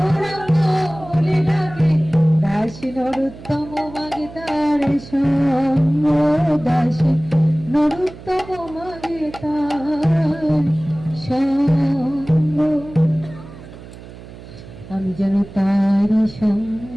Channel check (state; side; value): noise; right; hum, 17 dB below the sound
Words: বলে ডাকে। দাসী নরোত্তম মাগে তার সঙ্গ, দাসী নরোত্তম মাগে তার সঙ্গ। আমি যেন তার সঙ্গ